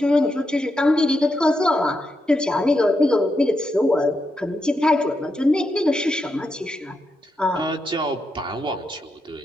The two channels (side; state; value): both; normal; correlation 0.84